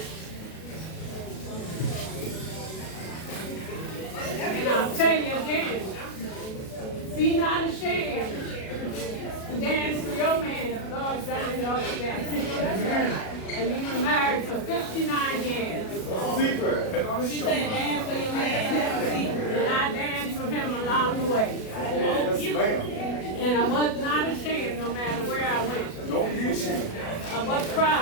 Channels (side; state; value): right; late; 37 ms